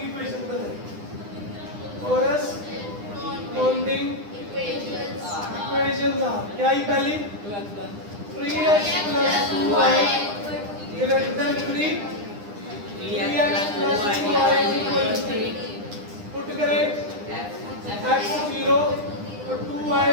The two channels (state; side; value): late; left; 9.9 ms